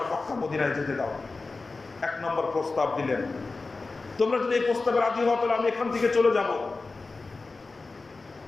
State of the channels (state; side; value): quieter; right; 3.7 dB